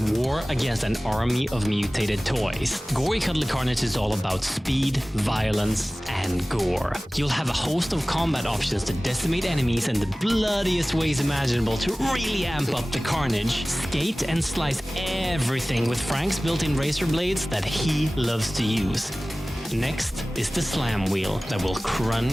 war against an army of mutated toys. Gory Cuddly Carnage is all about speed, violence, and gore. You'll have a host of combat options to decimate enemies in the bloodiest ways imaginable to really amp up the carnage. Skate and slice everything with Frank's built-in razor blades that he loves to use. Next is the slam wheel that will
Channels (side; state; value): both; normal; correlation 0.98